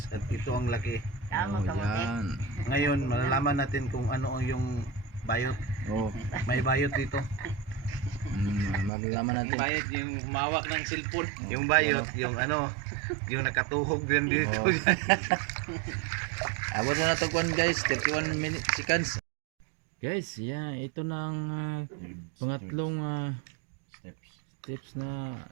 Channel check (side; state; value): left; drops out; at 8.9 s